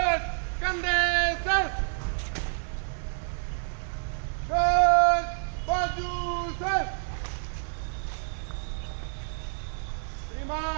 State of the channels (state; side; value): silent; left; 59 dB below the other